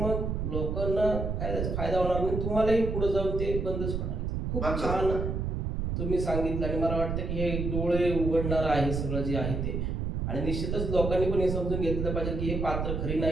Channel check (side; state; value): right; noise; rumble, 2 dB below the sound